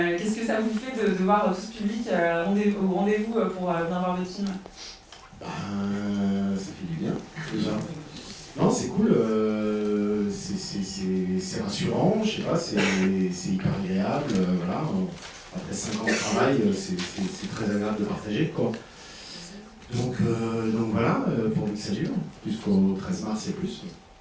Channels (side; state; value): both; identical; correlation 1.00